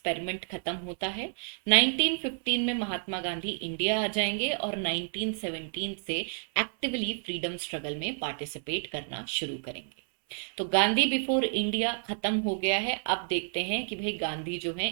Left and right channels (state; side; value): silent; left; 58 dB below the other